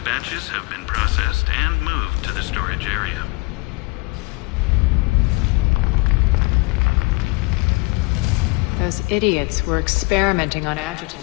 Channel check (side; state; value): right; quieter; 26.1 dB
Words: have been processed and moved to the storage area. Those idiots were experimenting on